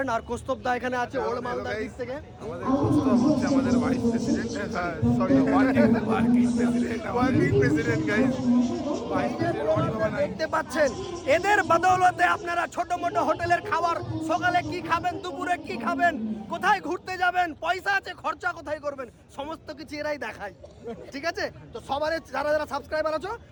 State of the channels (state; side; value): identical; both; correlation 1.00